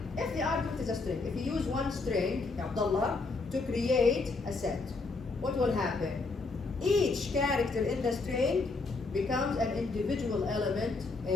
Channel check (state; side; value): quieter; right; 3.8 dB